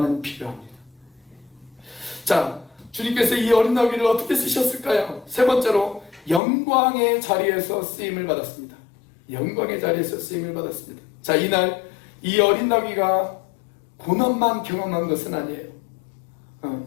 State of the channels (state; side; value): drops out; right; at 6.4 s